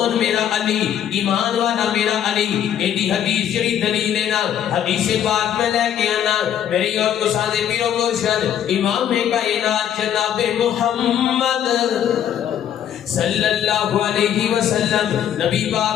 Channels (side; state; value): right; quieter; 9.9 dB